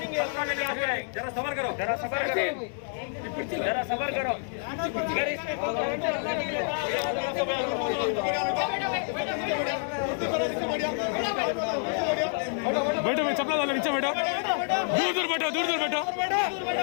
जरा सबर करो, जरा सबर करो, जरा सबर करो। अगर इसमें बैठो मैं चपला डालो नीचे बैठो, दूर दूर बैठो, दूर दूर बैठो,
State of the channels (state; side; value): silent; right; digital silence